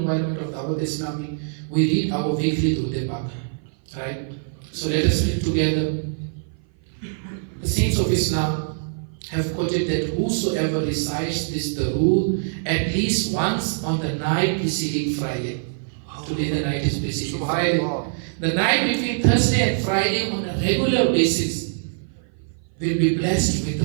of Dawat Islami, we read our weekly Durud Pak, right? So let us read together. The saints of Islam have quoted that whosoever recites this Durud at least once on the night preceding Friday. Today the night is preceding Friday. The night between Thursday and Friday on a regular basis will be blessed with the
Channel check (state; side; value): silent; left; 57 dB below the other